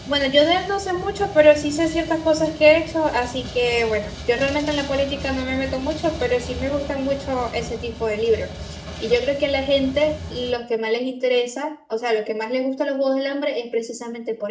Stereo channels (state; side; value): identical; both; correlation 1.00